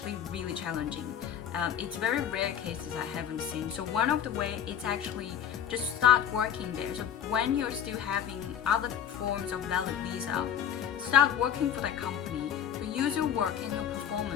really challenging. It's very rare cases I haven't seen. So one of the way, it's actually just start working there. So when you're still having other forms of valid visa, start working for that company. Use your work and your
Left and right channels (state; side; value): quieter; right; 9.2 dB